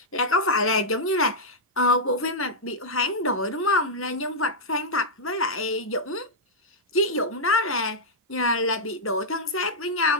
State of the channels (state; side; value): normal; both; correlation -0.07